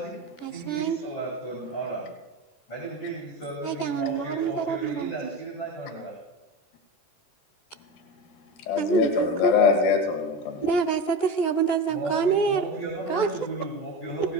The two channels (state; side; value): late; right; 14 ms